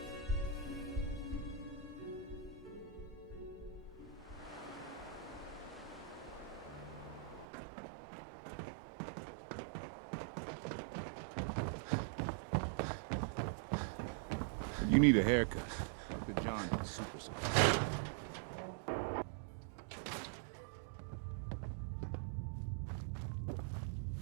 You need a haircut. The John is super soft.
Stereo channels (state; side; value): drops out; left; at 7.5 s